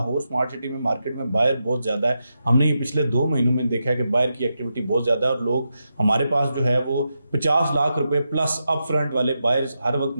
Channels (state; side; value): inverted; both; correlation -0.87